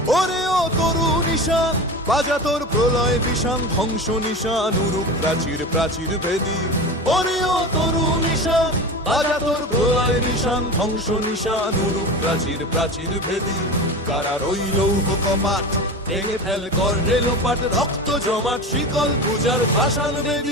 ওরে ও তরু নিশান বাজা তোর প্রলয় বিষান, ধ্বংস নিশান উরুক প্রাচীর প্রাচীর ভেদী। ওরে ও তরু নিশান বাজা তোর প্রলয় নিশান, ধ্বংস নিশান উরুক প্রাচীর প্রাচীর ভেদী। কারার ওই লৌহ কপাট ভেঙে ফেল কর রে লোপাট, রক্ত জমাট শিকল পূজার পাষাণ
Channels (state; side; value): normal; both; correlation 0.29